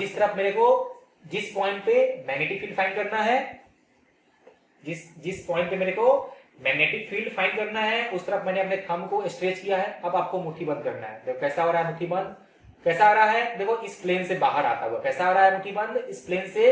तरफ मेरे को जिस पॉइंट पे मैग्नेटिक फील्ड फाइंड करना है, जिस पॉइंट पे मेरे को मैग्नेटिक फील्ड फाइंड करना है उस तरफ मैंने अपने थंब को स्ट्रेच किया है। अब आपको मुट्ठी बंद करना है। देखो कैसा हो रहा है मुट्ठी बंद, कैसा आ रहा है, देखो इस प्लेन से बाहर आता हुआ, कैसा आ रहा है मुट्ठी बंद, इस प्लेन से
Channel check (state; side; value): identical; both; correlation 1.00